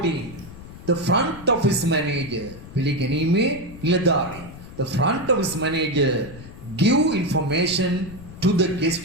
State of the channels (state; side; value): noise; left; rumble, 15 dB below the sound